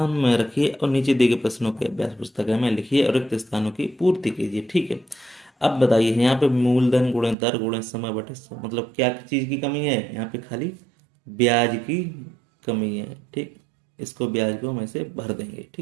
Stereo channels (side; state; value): left; drops out; at 7.4 s